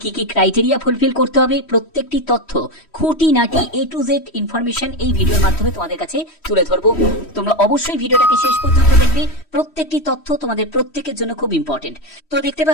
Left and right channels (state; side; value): late; right; 3.1 ms